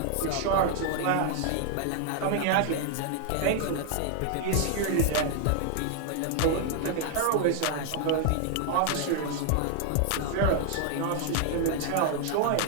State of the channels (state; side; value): different; both; correlation 0.00